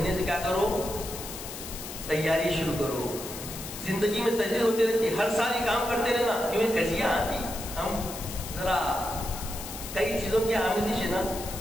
سے کیا کرو؟ تیاری شروع کرو. زندگی میں تجدید ہوتی رہتی، ہر سال یہ کام کرتے رہنا. کیونکہ کجیاں آتی، ہم ذرا کئی چیزوں کی آمیزش ہے نا.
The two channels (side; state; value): left; noise; hiss, 10 dB below the sound